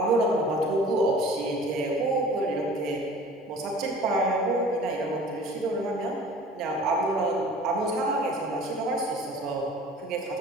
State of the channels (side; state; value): both; normal; correlation 0.45